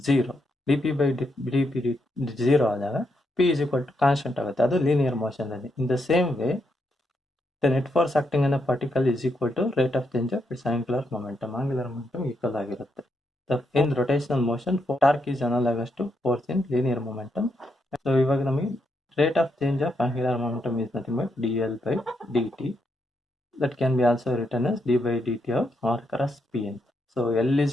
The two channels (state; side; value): normal; both; correlation 0.80